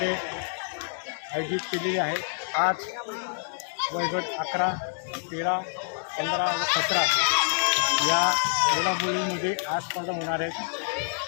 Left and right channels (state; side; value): silent; right; digital silence